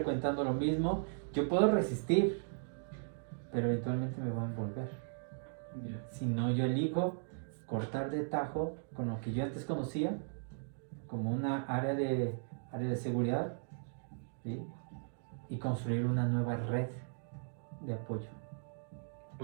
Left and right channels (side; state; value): left; silent; digital silence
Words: lo mismo, yo puedo resistir, pero eventualmente me va a envolver. Si no, yo elijo cortar de tajo con lo que yo antes conocía como una área de seguridad, ¿sí?, y construir una nueva red de apoyo.